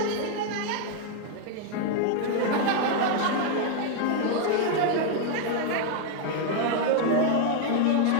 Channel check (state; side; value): different; both; correlation 0.00